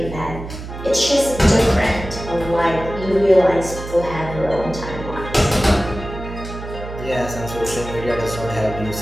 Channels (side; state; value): right; noise; hum, 10 dB below the sound